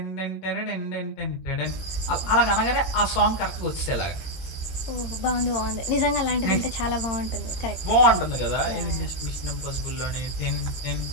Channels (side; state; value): right; late; 22 ms